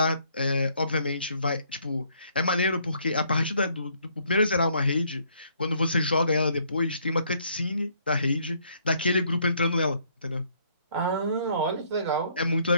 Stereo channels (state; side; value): inverted; both; correlation -0.67